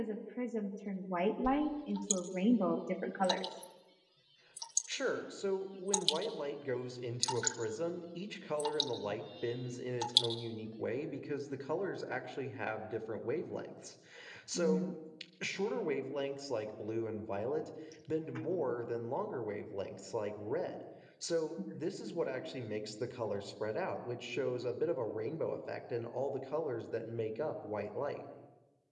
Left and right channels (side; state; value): both; identical; correlation 1.00